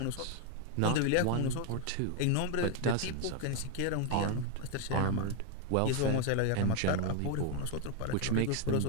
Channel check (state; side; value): different; both; correlation 0.00